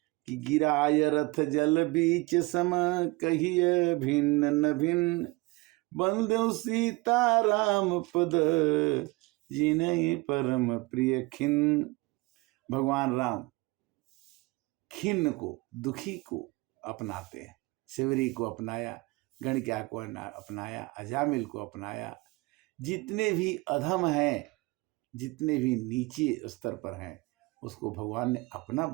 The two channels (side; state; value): left; quieter; 23.7 dB